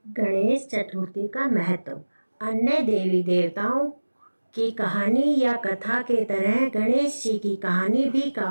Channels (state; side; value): inverted; both; correlation -1.00